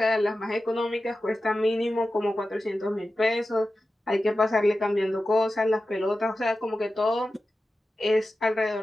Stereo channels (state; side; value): normal; both; correlation 0.93